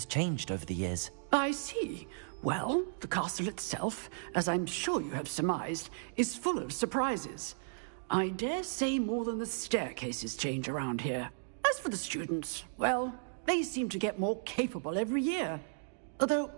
changed over the years. I see. Well, the castle itself, as I'm sure you have surmised, is full of surprises. I dare say more than the staircases change around here. As for the students, well, they seem to get more capable every year. Although,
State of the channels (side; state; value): left; silent; digital silence